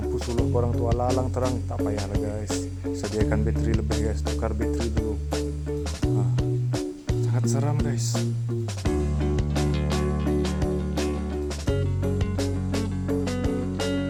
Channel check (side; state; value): both; identical; correlation 1.00